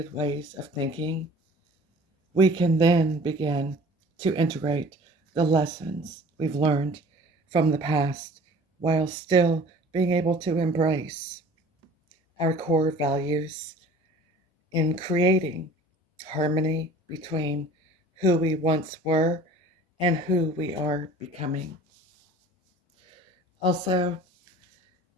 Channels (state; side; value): normal; both; correlation 0.47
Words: ways of thinking, we can then begin to integrate the lessons we've learned from the past while still being able to embrace our core values in creating harmony between who we once were and who we are becoming. Also,